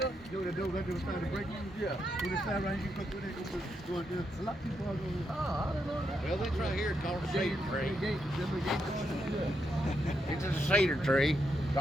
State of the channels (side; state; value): both; normal; correlation 0.81